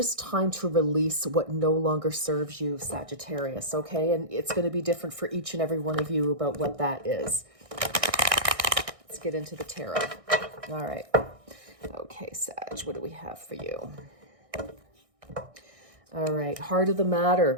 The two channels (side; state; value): left; late; 1.6 ms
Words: time to release what no longer serves you, Sagittarius, okay? And it's going to be different for each and every one of you about what that is. Let's get into the tarot. All right. Okay, Sag, what do we have for you? All right, heart of the